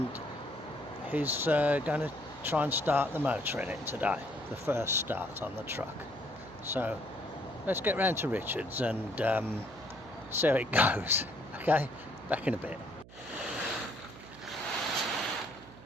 he's going to try and start the motor in it today, the first start on the truck. So let's get round to Richard's and see how it goes. Okay, back in a bit.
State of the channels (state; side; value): noise; right; hum, 19 dB below the sound